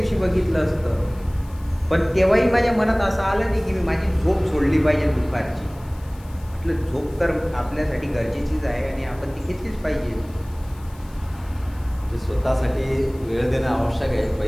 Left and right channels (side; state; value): left; noise; hiss, 26 dB below the sound